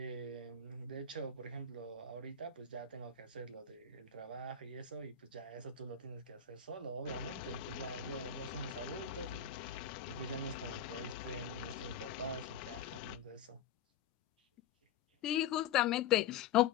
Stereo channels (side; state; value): right; quieter; 7.2 dB